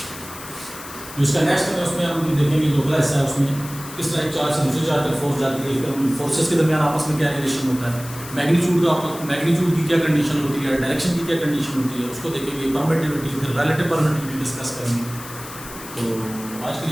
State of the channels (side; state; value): left; noise; hiss, 14 dB below the sound